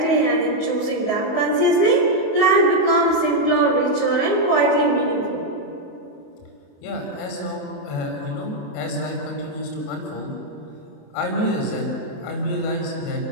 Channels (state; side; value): late; right; 28 ms